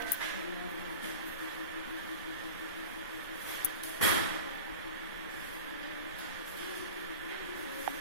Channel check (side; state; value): both; inverted; correlation -0.33